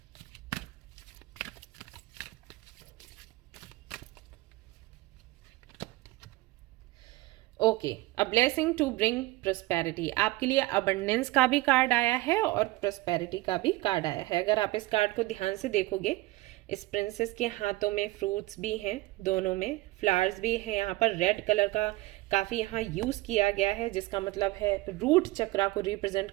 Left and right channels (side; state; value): left; quieter; 19.4 dB